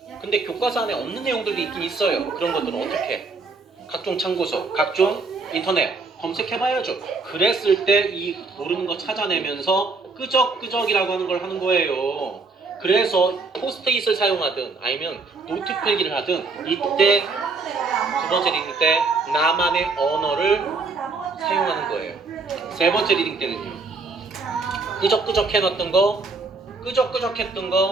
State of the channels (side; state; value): left; quieter; 4.0 dB